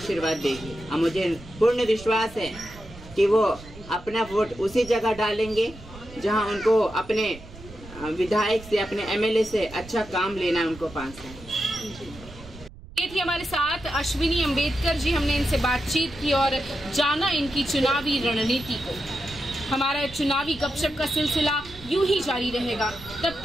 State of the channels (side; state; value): right; noise; rumble, 17 dB below the sound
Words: देगी और मुझे पूर्ण विश्वास है कि वो अपना वोट उसी जगह डालेंगे जहां उनको अपने विधायक से, अपने एमएलए से अच्छा काम लेना है उनको 5 साल। ये थी हमारे साथ अश्विनी अम्बेडकर जी। हमने इनसे बातचीत की और जाना इनकी चुनावी रणनीति को। हमारा चुनावी गपशप का सिलसिला यूं ही जारी रहेगा। तब